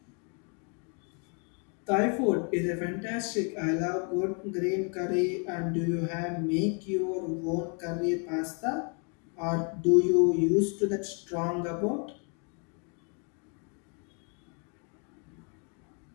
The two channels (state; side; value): quieter; right; 38.5 dB